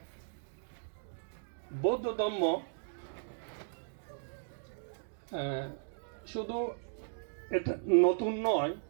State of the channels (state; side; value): silent; left; digital silence